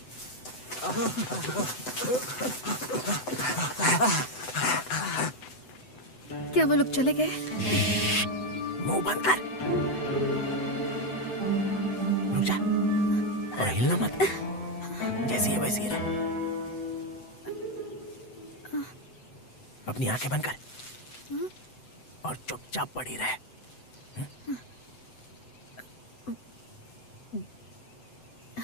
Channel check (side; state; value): right; late; 7.9 ms